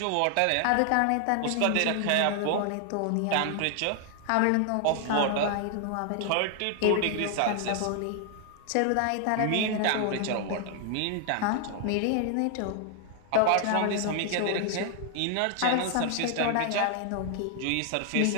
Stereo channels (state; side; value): different; both; correlation 0.00